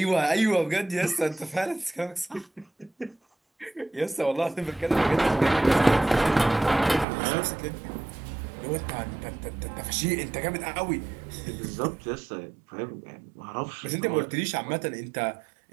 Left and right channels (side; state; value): left; drops out; at 7.1 s